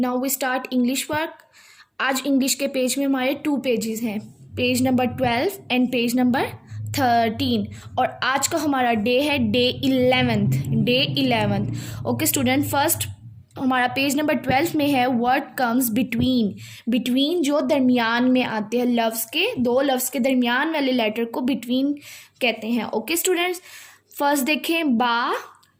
we start English work. आज इंग्लिश के पेज में हमारे 2 पेजेस हैं, page number 12 and page number 13। और आज का हमारा डे है day 11th। Okay student, first हमारा पेज नंबर 12 में है वर्ड कम्स बिटवीन जो दरमियान में आते हैं, लफ्ज़ के, दो लफ्ज़ के दरमियान वाले लेटर को बिटवीन कहते हैं। ओके स्टूडेंट्स, फर्स्ट देखें, बा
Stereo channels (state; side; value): identical; both; correlation 1.00